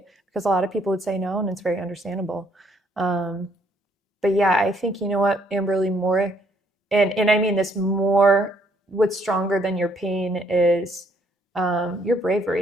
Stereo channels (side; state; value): both; normal; correlation 0.67